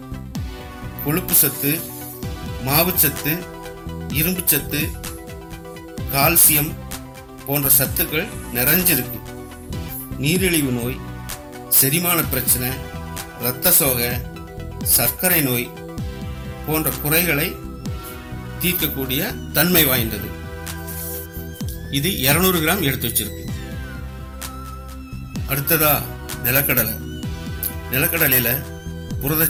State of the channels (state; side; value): identical; both; correlation 1.00